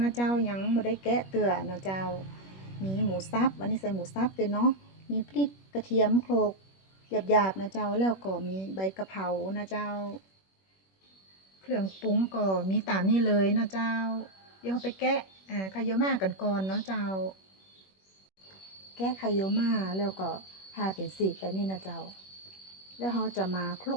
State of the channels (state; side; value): late; right; 21 ms